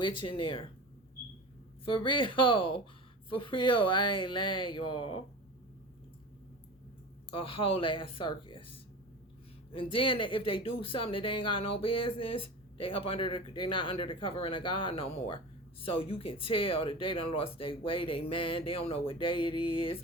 in there. For real. For real. I ain't lying, y'all. A whole ass circus. And then if they do something that they ain't got no business, they're not under the covering of God no more. So you can tell that they done lost their way, they man, they don't know what day it is.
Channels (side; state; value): both; normal; correlation 0.32